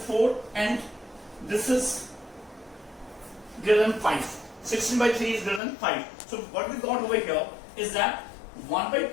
and this is greater than 5. 16 by 3 is greater than 5. So what we got over here is that 1 by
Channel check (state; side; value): drops out; right; at 5.6 s